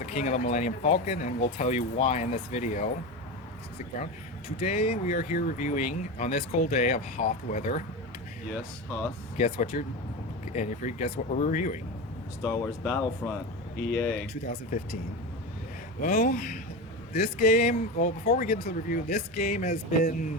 king of the Millennium Falcon, and we'll tell you why in this video. Stick around. Today we are here reviewing on this cold day of hot weather. Yes, Hoth. Guess what guess what we're reviewing? Star Wars Battlefront, EA. 2015. Well, this game. Well, before we get into the review, this game has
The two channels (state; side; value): normal; both; correlation 0.22